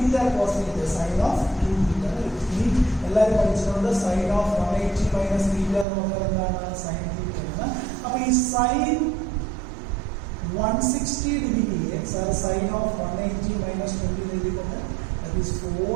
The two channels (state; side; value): drops out; left; at 5.9 s